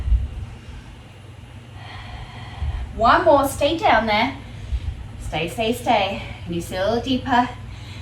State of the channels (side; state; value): both; identical; correlation 1.00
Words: One more, stay down there. Stay, stay, stay. Can you see a little deeper?